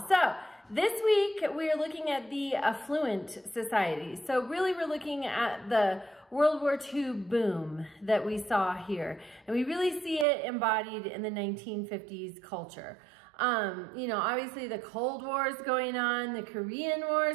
So this week we're looking at the affluent society. So really we're looking at the World War II boom that we saw here. And we really see it embodied in the 1950s culture. Obviously the Cold War is going on, the Korean War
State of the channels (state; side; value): drops out; left; at 10.2 s